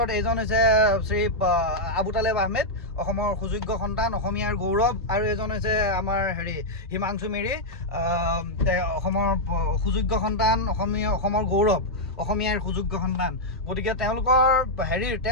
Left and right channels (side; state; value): both; normal; correlation -0.04